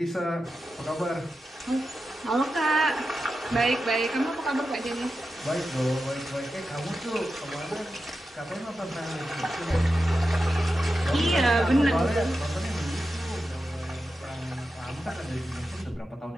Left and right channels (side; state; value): both; normal; correlation 0.91